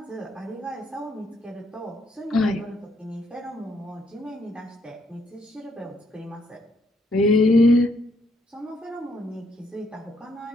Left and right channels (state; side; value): normal; both; correlation 0.72